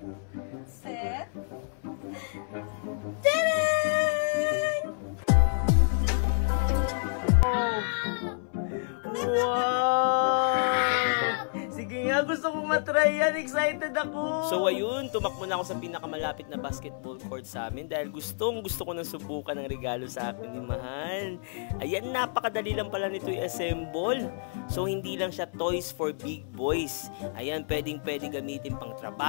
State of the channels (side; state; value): right; silent; 59 dB below the other